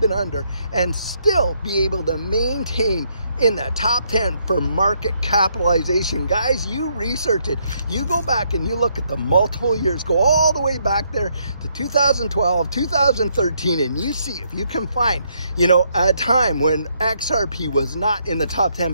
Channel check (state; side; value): inverted; both; correlation -0.74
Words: been under and still be able to maintain in the top 10 for market capitalization. Guys, you research it. You go back and you look at the multiple years, go all the way back there to 2012, 2013, and you see if you can find, you know, a time when XRP was not in the top 10.